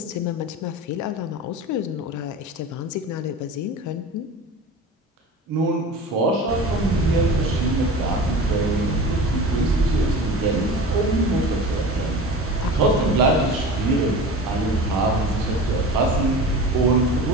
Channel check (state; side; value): normal; both; correlation 0.35